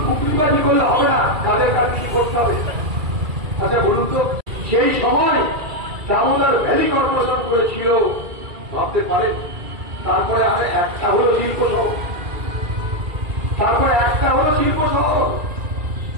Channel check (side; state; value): left; late; 2.3 ms